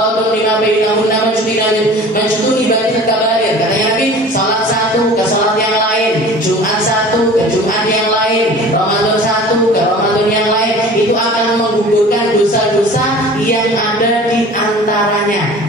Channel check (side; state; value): both; normal; correlation 0.43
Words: lima bainahunna majtunibatil kabair. Katanya Nabi, salat satu ke salat yang lain, Jumat satu ke Jumat yang lain, Ramadan satu ke Ramadan yang lain, itu akan menggugurkan dosa-dosa yang ada di